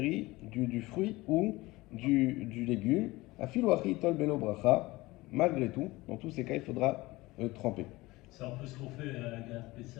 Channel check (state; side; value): quieter; right; 20.5 dB